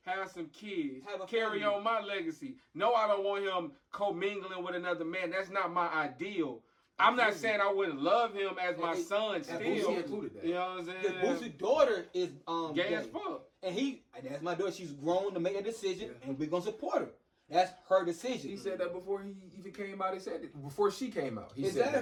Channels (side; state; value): both; identical; correlation 1.00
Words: have some kids, carry on my legacy. No, I don't want him commingling with another man. That's not my ideal. I'm not saying I wouldn't love him as my son still. Boosie included that. You know what I'm saying? Boosie's daughter is gay as fuck. And that's my daughter. She's grown to make a decision, and we're gonna support her. That's her decision. He said that before he even came out. He said it before she came out. He